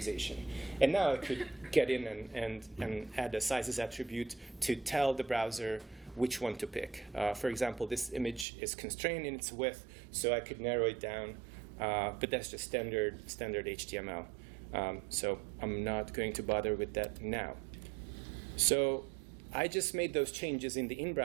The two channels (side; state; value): left; drops out; at 8.5 s